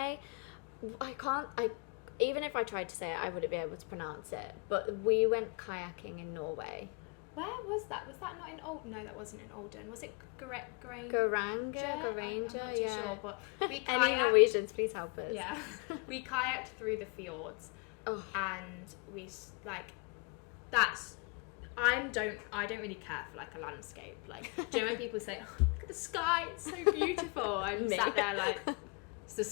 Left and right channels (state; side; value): quieter; right; 34.0 dB